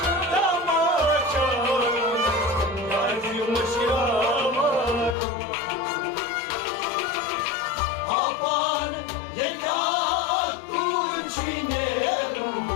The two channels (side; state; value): right; drops out; at 5.2 s